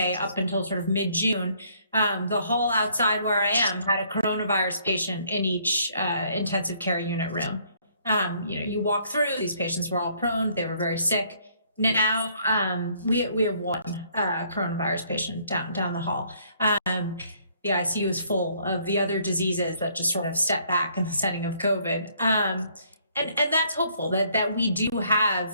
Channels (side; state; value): both; inverted; correlation -0.65